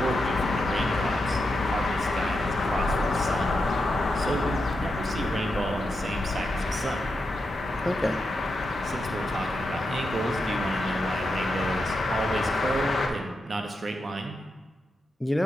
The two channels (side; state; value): both; normal; correlation 0.86